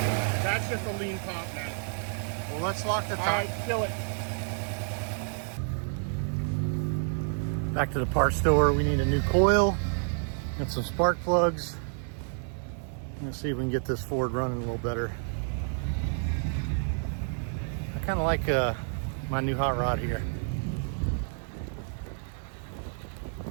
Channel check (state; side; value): silent; left; 58 dB below the other